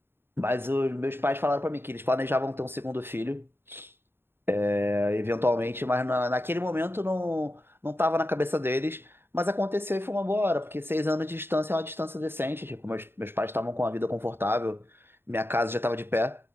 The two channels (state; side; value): late; left; 0.11 ms